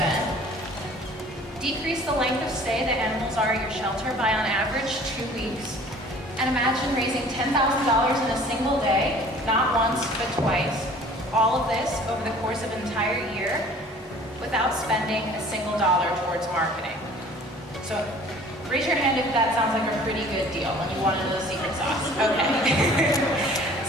decrease the length of stay that animals are at your shelter by on average 2 weeks, and imagine raising $10,000 in a single day, not once but twice, all of this over the course of an entire year without spending a single dollar towards marketing. So raise your hand if that sounds like a pretty good deal and you want to know the secret sauce. Okay.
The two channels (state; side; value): normal; both; correlation 0.50